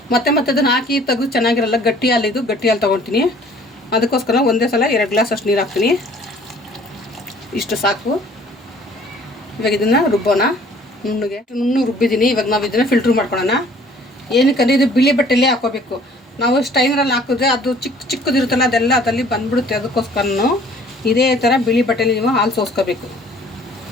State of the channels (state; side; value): normal; both; correlation 0.54